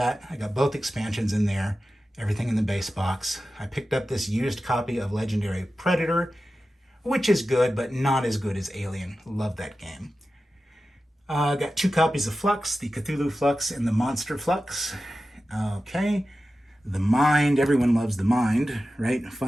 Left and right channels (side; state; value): both; normal; correlation 0.93